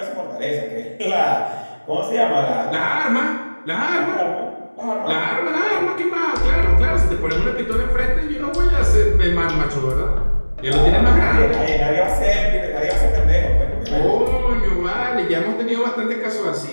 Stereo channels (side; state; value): both; inverted; correlation -1.00